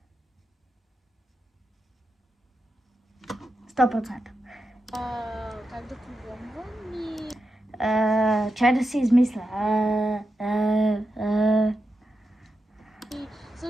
100%. Как да програмвам и... Чай да си измисля. И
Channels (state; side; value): normal; both; correlation 0.88